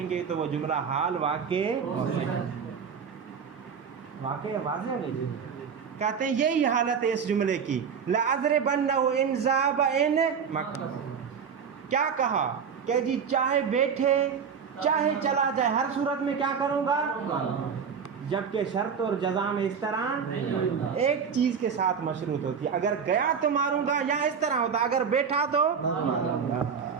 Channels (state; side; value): quieter; left; 6.7 dB